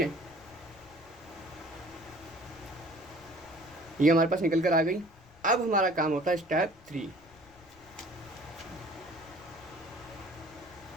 ये हमारे पास निकल कर आ गई। अब हमारा काम होता है स्टेप 3।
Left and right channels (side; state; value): left; noise; rumble, 25 dB below the sound